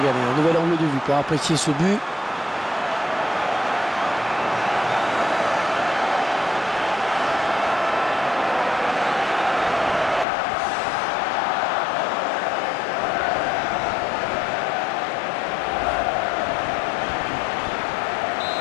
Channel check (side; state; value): right; drops out; at 10.2 s